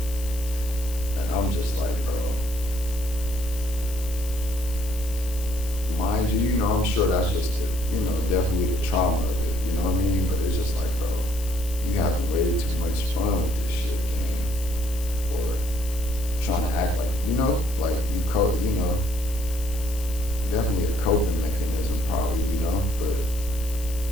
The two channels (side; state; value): left; noise; hiss, 13 dB below the sound